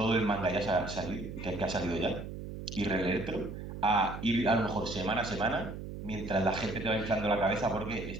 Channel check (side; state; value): right; noise; hum, 9 dB below the sound